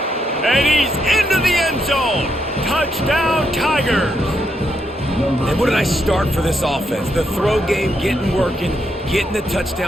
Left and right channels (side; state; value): both; normal; correlation 0.79